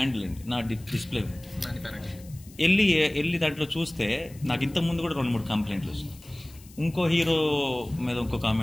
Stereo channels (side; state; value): left; noise; hiss, 23 dB below the sound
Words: అండి, నా డిస్ప్లే వెళ్ళి దాంట్లో చూస్తే నాకు ఇంతకుముందు కూడా 2-3 కంప్లైంట్లు వచ్చినాయి. ఇంకో హీరో మీద ఇంకో